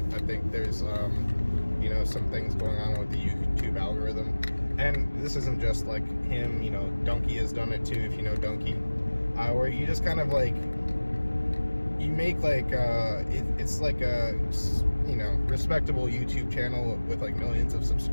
I think there's, you know, some things going on with the YouTube algorithm, and this isn't just, like, him, you know, Donkey has done it too, if you know Donkey, where you just kind of, like, you make, like, it's like a, you know, respectable YouTube channel with, like, millions of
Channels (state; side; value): inverted; both; correlation -1.00